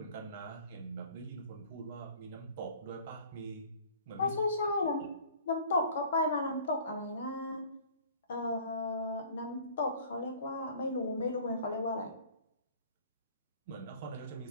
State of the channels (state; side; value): inverted; both; correlation -0.49